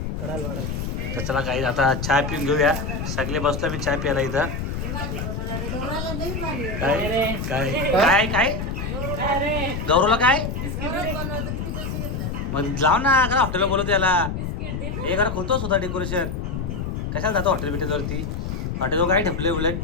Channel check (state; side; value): noise; left; rumble, 4 dB below the sound